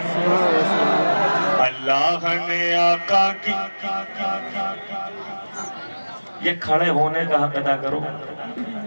अल्लाह ने आका की, ये खड़े होने का हक अदा करो।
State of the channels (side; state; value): both; inverted; correlation -1.00